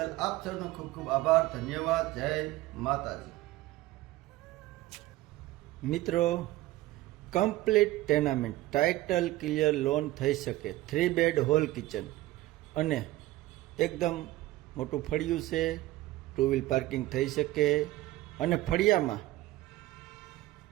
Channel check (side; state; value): left; quieter; 17.1 dB